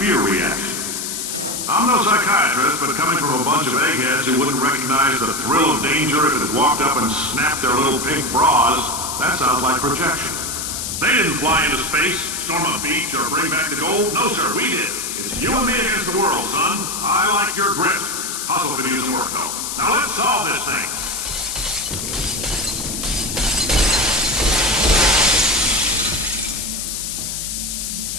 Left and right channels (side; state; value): left; noise; hiss, 4 dB below the sound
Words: reaction. I'm no psychiatrist, but coming from a bunch of eggheads who wouldn't recognize the thrill of danger if it had walked up and snapped their little pink bras, that sounds like projection. They didn't fly into space, storm a beach, or bring back the gold. No, sir, we did. It's you and me against the world, son. I like your grit. Hustle could use some work, though. Now let's solve this thing.